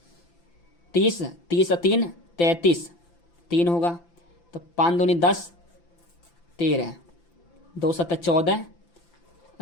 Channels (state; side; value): late; right; 5.9 ms